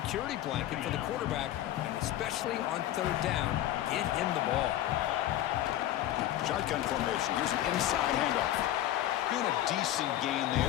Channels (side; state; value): right; quieter; 13.3 dB